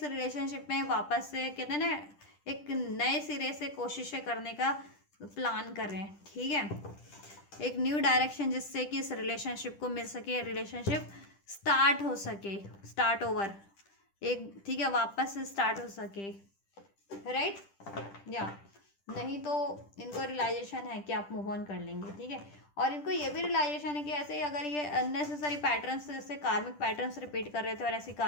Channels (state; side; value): late; right; 10 ms